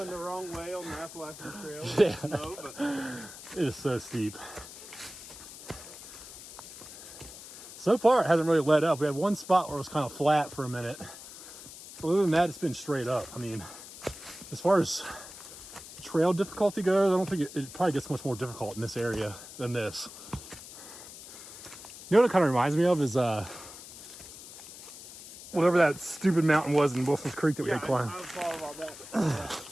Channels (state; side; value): noise; left; hiss, 15 dB below the sound